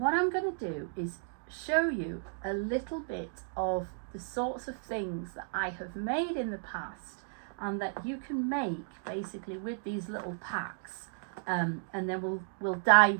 I'm going to do is show you a little bit of the sorts of things that I have made in the past and that you can make basically with these little packs, and then we'll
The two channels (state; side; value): silent; left; digital silence